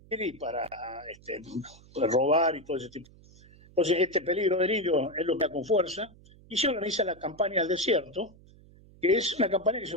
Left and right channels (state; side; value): noise; right; hum, 24 dB below the sound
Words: y para robar y todo ese tipo. Entonces, este peligro del indio es lo que da con fuerza, y se organiza la campaña al desierto, que es una campaña que se